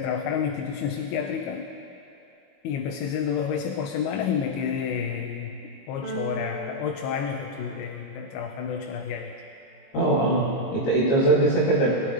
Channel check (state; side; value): late; right; 22 ms